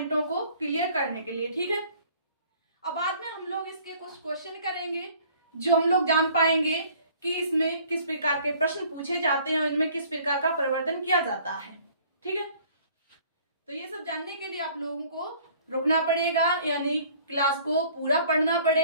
को क्लियर करने के लिए। ठीक है, अब बाद में हम लोग इसके कुछ क्वेश्चन करेंगे जो हम लोग जान पाएंगे कि इसमें किस प्रकार के प्रश्न पूछे जाते हैं और इनमें किस प्रकार का परिवर्तन किया जाता है। ठीक है, तो ये सब जानने के लिए आप लोगों को रुकना पड़ेगा, यानी क्लास को पूरा पढ़ना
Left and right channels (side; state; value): both; inverted; correlation -0.54